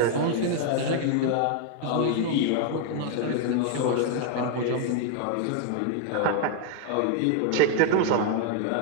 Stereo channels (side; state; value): both; different; correlation 0.01